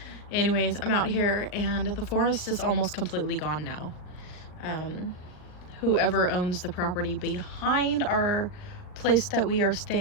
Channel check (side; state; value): right; late; 39 ms